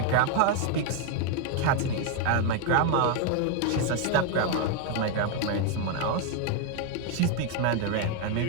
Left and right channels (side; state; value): both; different; correlation 0.01